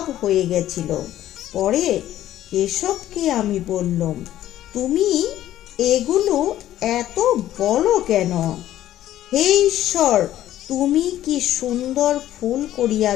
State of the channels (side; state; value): right; quieter; 13.0 dB